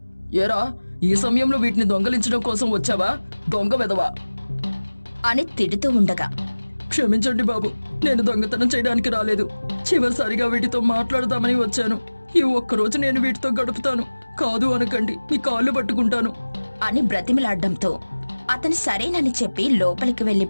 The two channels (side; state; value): both; inverted; correlation -1.00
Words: ఏరా, ఈ సమయంలో వీటిని దొంగలించడం కోసం వచ్చావా? దొంగ వెదవా అని తిడుతూ ఉండగా, క్షమించండి బాబు, నేను దొంగతనం చేయడానికి రాలేదు. చివరిసారిగా వీటితో మాట్లాడదామని వచ్చాను. ఈ ఒక్కరోజు నేను వీటితో గడుపుతాను. కాదు అనకండి, మీ కాళ్ళు పట్టుకుంటాను అని బ్రతిమిలాడ్డంతో అతను సరేనని చెప్పి లోపలికి